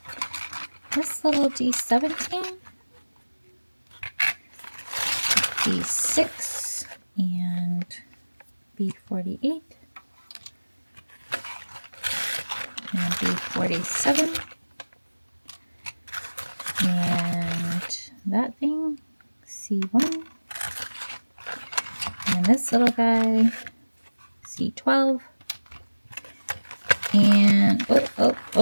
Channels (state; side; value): inverted; both; correlation -1.00